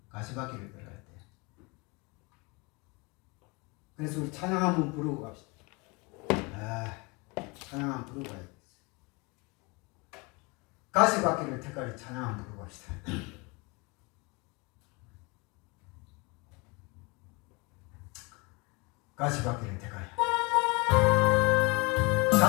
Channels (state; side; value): quieter; right; 27.9 dB